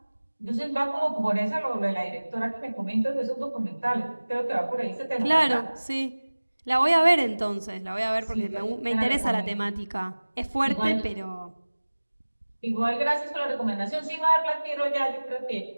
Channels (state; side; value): inverted; both; correlation -1.00